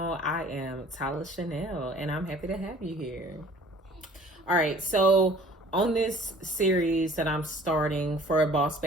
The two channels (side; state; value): both; normal; correlation 0.51